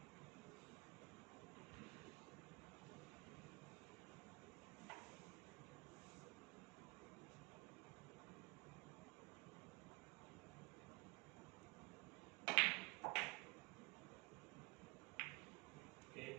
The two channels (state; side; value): quieter; left; 26.0 dB